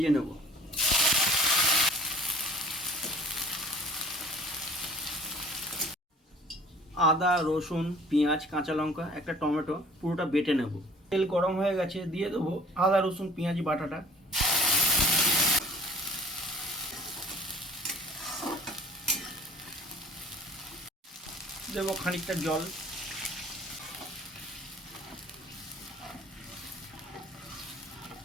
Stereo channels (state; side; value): normal; both; correlation 0.49